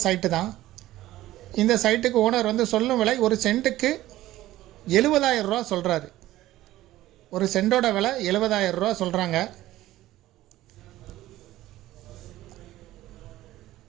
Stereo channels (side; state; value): left; quieter; 15.4 dB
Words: சைட்டு தான். இந்த சைட்டுக்கு ஓனர் வந்து சொல்லும் விலை ஒரு சென்ட்டுக்கு 70,000 ரூபா சொல்கிறாரு. ஒரு சென்டோட விலை 70,000 ரூபா சொல்கிறாங்க.